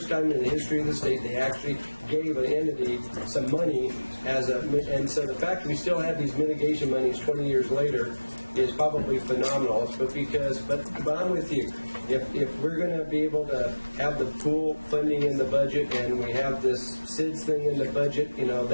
time in the history of the state they actually gave an entity some money and so the fact that we still have these mitigation monies 20 years later is probably phenomenal. But I'm with you. If we're going to be able to have the pool funding in the budget, and we have this SIDS thing in the budget, you know,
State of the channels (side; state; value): both; inverted; correlation -1.00